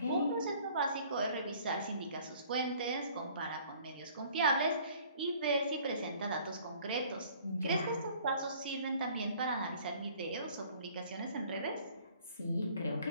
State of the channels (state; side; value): inverted; both; correlation -0.54